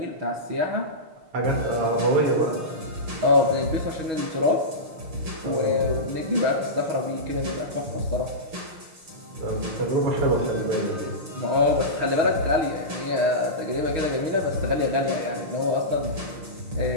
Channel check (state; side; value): late; left; 6.5 ms